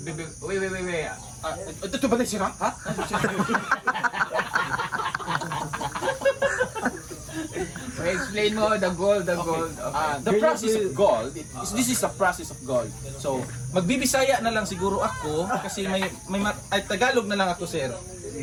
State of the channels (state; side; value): identical; both; correlation 1.00